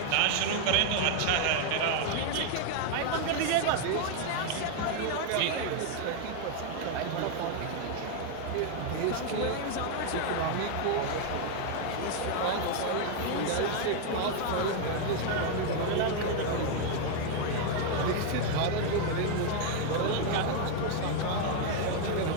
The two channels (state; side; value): different; both; correlation 0.01